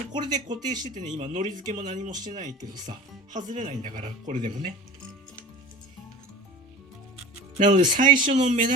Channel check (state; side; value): normal; both; correlation 0.37